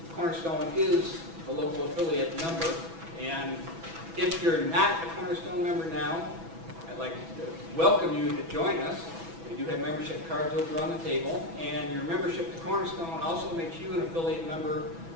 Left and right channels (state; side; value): late; left; 6.1 ms